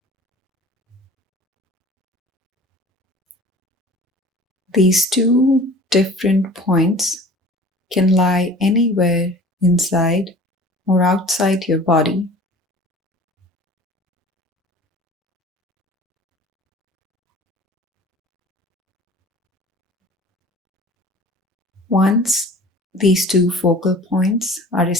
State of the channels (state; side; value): normal; both; correlation 0.44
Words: These two different points can lie anywhere inside or outside your body. Once these two focal points are